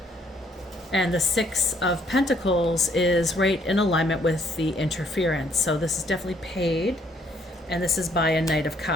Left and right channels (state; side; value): normal; both; correlation 0.67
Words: And the Six of Pentacles is right in alignment with the interference. So this is definitely paid, and this is by a Knight of